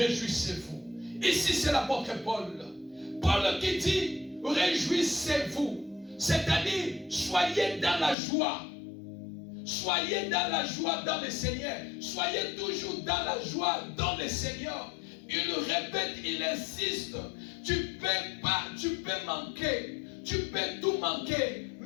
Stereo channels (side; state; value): right; drops out; at 8.2 s